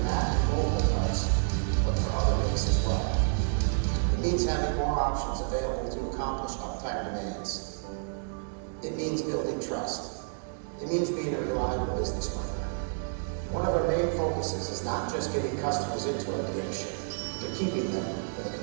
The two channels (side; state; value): left; silent; digital silence